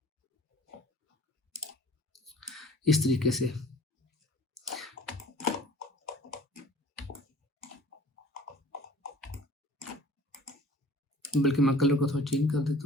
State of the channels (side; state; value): both; normal; correlation 0.48